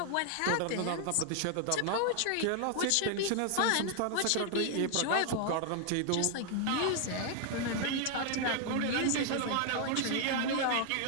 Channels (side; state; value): both; different; correlation 0.00